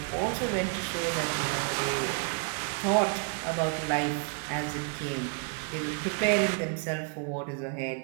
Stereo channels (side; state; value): left; quieter; 38.4 dB